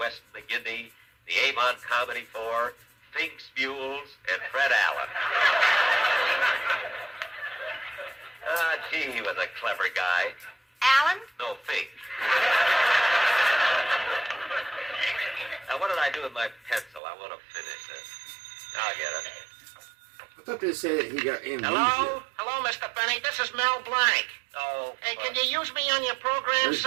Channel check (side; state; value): left; drops out; at 17.0 s